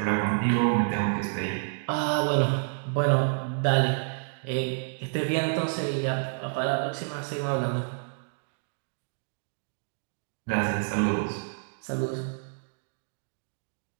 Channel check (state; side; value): silent; left; digital silence